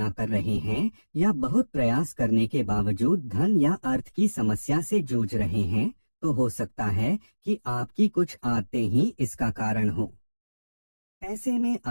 कर रहे हैं या बहुत प्रयास करने के बावजूद धन या अर्थ की समस्या से जूझ रहे हैं, तो हो सकता है कि आपकी कुछ आदतें ही इसका कारण हो। ऐसे में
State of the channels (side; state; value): both; inverted; correlation -1.00